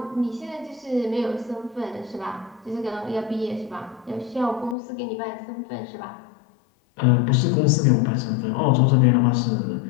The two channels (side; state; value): right; drops out; at 4.8 s